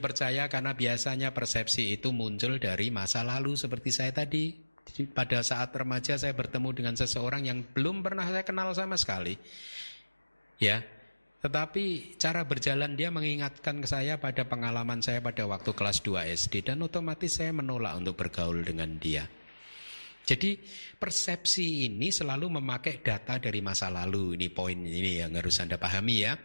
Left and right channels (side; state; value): both; inverted; correlation -1.00